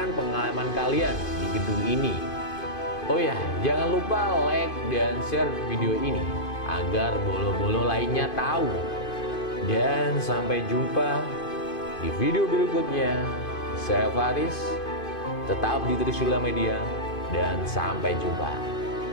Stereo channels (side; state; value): right; late; 2.5 ms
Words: pengalaman kalian di gedung ini. Oh ya, jangan lupa like dan share video ini agar bolo-bolo lainnya tahu. Dan sampai jumpa di video berikutnya. Saya Faris, tetap di Trisula Media, dan sampai jumpa.